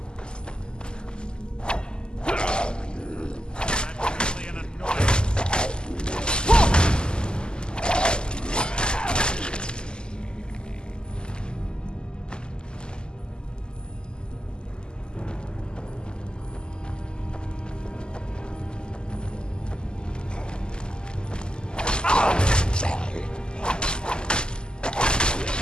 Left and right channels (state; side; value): late; right; 0.047 ms